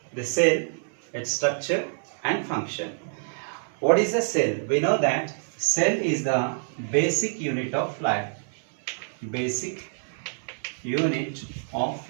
the cell, its structure and function. What is a cell? We know that cell is the basic unit of life. Basic unit of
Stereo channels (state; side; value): silent; left; 59 dB below the other